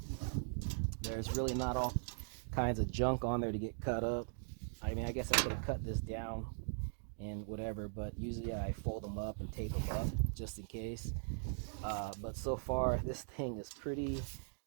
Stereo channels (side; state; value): left; silent; digital silence